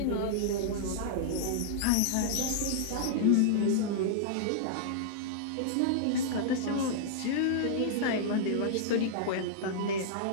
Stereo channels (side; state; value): both; different; correlation -0.01